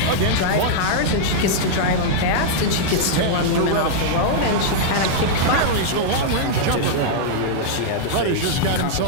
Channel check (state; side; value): different; both; correlation -0.02